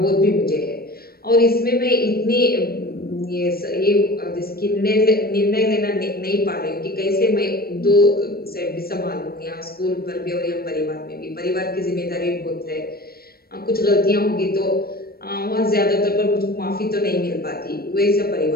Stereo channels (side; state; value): right; late; 0.44 ms